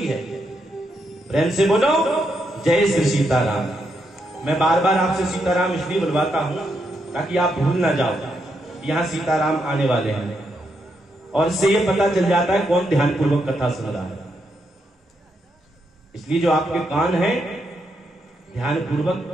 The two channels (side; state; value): both; normal; correlation 0.80